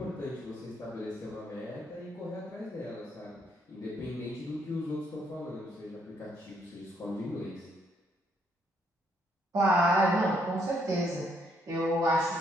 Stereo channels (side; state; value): both; normal; correlation 0.71